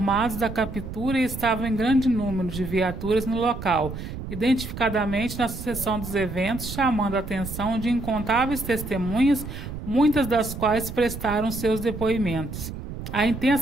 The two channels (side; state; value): right; noise; rumble, 9 dB below the sound